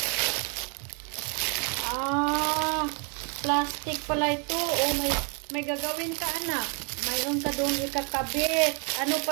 Plastic pala ito. Oh, may gagawin ka anak. Mayroon ka doon ikakabit. Ano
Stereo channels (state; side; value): quieter; left; 35.3 dB